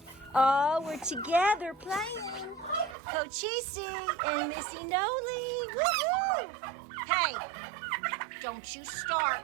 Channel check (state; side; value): drops out; left; at 3.0 s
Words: Oh, we're together playing. Cochise and Missy Noli. Woohoo! Hey, don't you